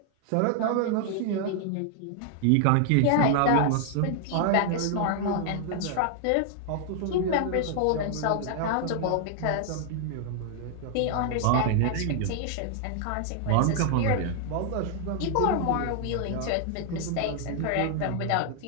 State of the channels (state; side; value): different; both; correlation 0.00